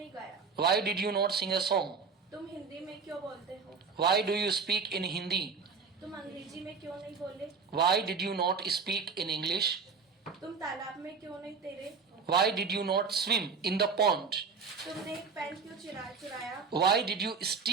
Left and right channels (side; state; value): left; quieter; 5.3 dB